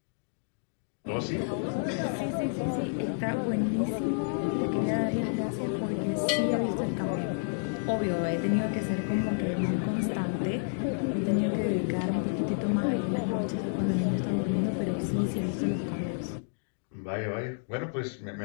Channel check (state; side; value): silent; right; digital silence